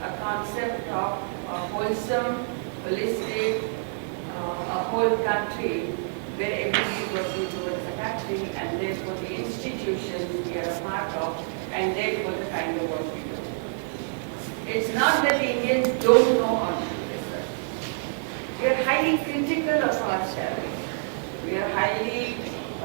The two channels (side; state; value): left; silent; digital silence